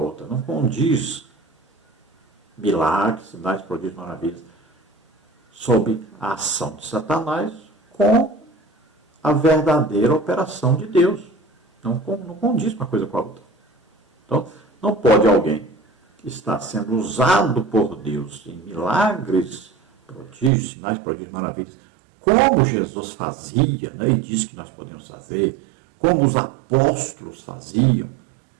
não condiz milagres, sinais, prodígios, maravilhas, sob a ação de Satanás, com a verdadeira operação de Deus. Não condiz uma coisa com a outra. Então, não pode alguém que está sendo usado por Deus em milagres, prodígios, sinais, prodígios, maravilhas, como Jesus fazia, né, e diz que nós podemos fazer, como os apóstolos faziam,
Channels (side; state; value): left; drops out; at 20.5 s